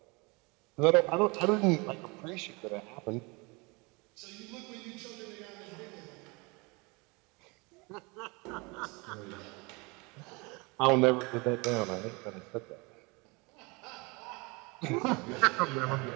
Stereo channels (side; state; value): left; quieter; 27.5 dB